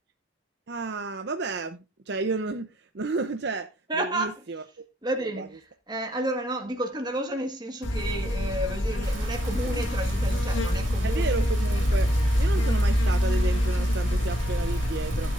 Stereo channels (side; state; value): both; normal; correlation 0.71